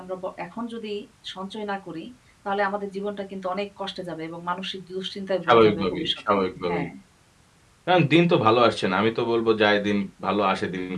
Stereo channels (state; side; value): identical; both; correlation 1.00